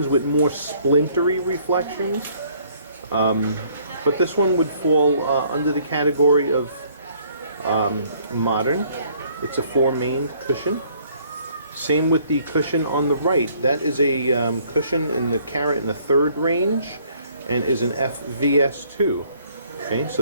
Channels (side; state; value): both; inverted; correlation -0.62